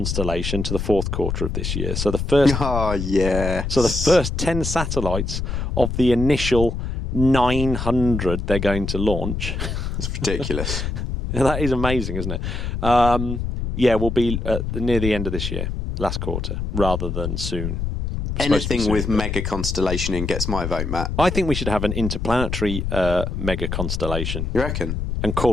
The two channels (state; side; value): noise; left; rumble, 3 dB below the sound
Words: to the fourth quarter of this year. So the first, So the first 10 satellites of the initial 900 they're going to launch. It's ridiculous. That is amazing, isn't it? Will be near the end of this year. Last quarter, rather than soon. Anything with mega constellation in gets my vote, Matt. I think we should have an interplanetary mega constellation. You reckon? And